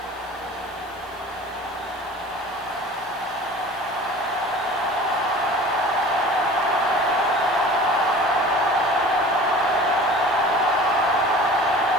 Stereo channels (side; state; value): left; noise; hiss, 27 dB below the sound